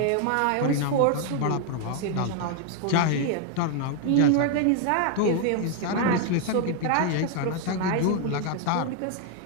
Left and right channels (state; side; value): different; both; correlation 0.00